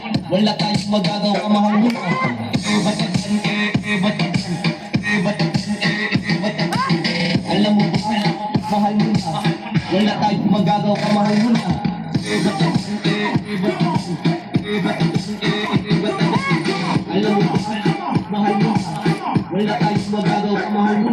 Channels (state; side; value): identical; both; correlation 1.00